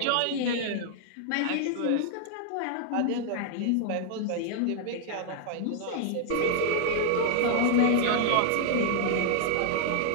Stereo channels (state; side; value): different; both; correlation 0.00